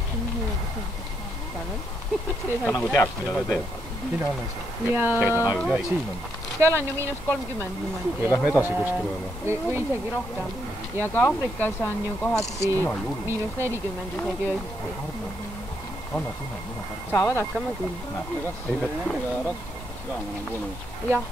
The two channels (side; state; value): both; normal; correlation 0.78